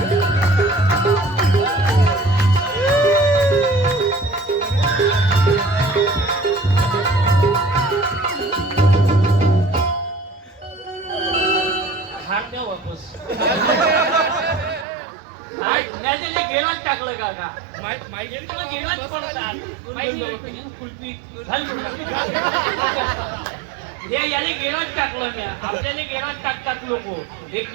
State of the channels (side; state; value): left; drops out; at 14.9 s